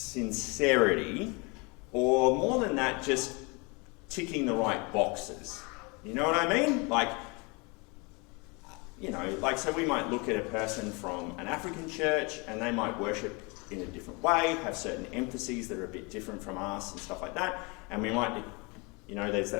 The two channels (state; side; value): quieter; right; 29.1 dB